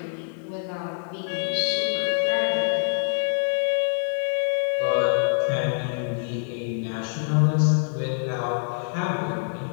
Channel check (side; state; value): right; silent; 62 dB below the other